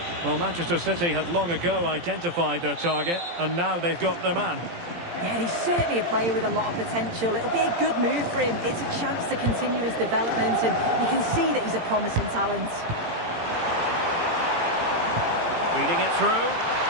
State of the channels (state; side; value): late; left; 18 ms